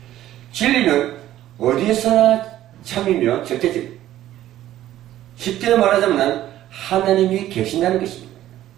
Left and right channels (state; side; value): quieter; left; 13.3 dB